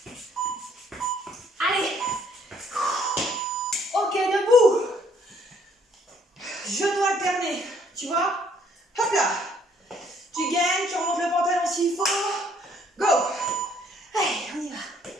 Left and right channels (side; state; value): both; normal; correlation 0.64